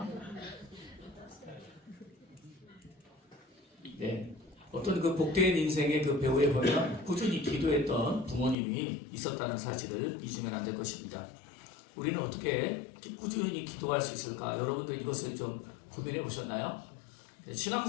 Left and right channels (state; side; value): drops out; right; at 8.6 s